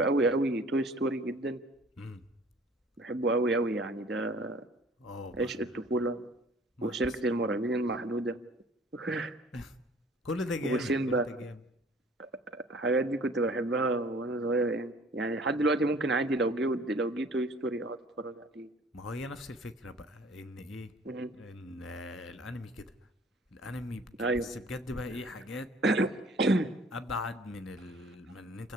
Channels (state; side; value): normal; both; correlation 0.52